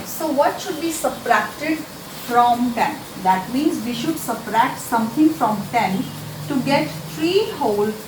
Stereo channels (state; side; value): identical; both; correlation 1.00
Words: So what should be subtracted from 10? That means we should subtract something from 10 to get 3 whole